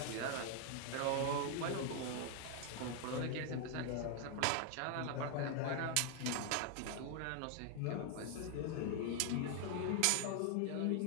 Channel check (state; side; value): different; both; correlation 0.00